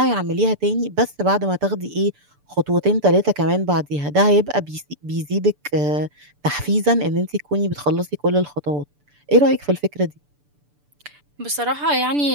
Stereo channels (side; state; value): left; late; 6.9 ms